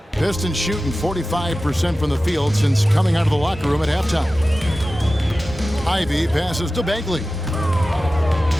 Pistons shooting 45% from the field since coming out of the locker room at halftime. Ivy passes to Bagley.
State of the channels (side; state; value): both; normal; correlation 0.95